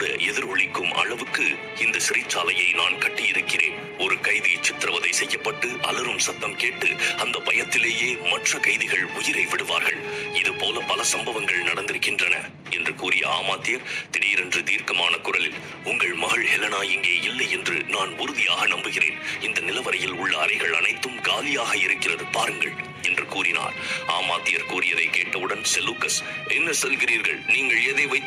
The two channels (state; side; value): identical; both; correlation 1.00